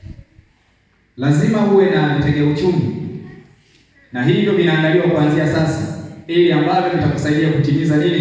Lazima uwe na vitega uchumi, na hivyo vinaandaliwa kuanzia sasa, ili ambavyo vitakusaidia kutimiza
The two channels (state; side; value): identical; both; correlation 1.00